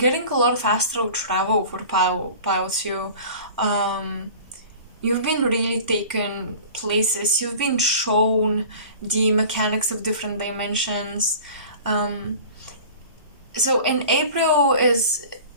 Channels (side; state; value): both; inverted; correlation -0.41